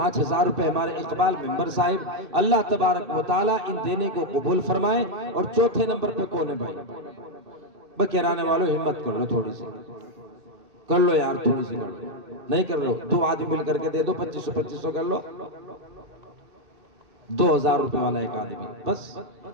روپے ہمارے اقبال ممبر صاحب، اللہ تبارک و تعالیٰ ان دینے کو قبول فرمائے۔ اور چوتھے نمبر پہ کون ہے بھائی؟ بکیرانے والوں ہمت کر لو، تھوڑی سی کر لو یار، تھوڑی سی کر لو، نہیں کر لو 2 آدمی مل کر کے دے دو، 2500 کر لو، 2000 روپے والا ایک آدمی بس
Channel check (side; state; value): left; late; 2.6 ms